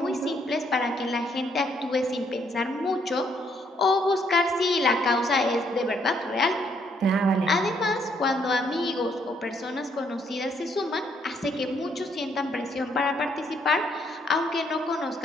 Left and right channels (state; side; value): normal; both; correlation 0.70